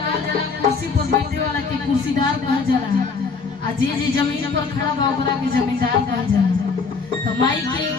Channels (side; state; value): right; quieter; 4.8 dB